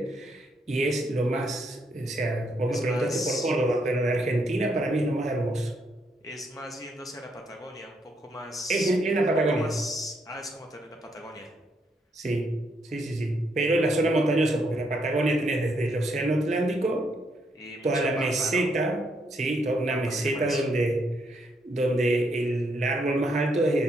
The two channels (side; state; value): both; normal; correlation 0.75